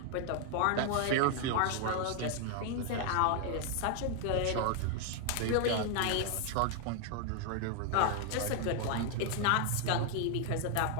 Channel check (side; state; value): both; different; correlation 0.00